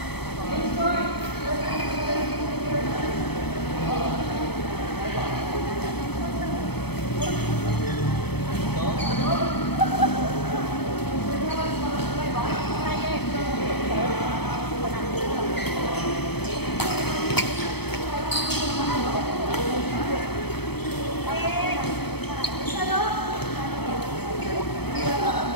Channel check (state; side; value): late; right; 0.97 ms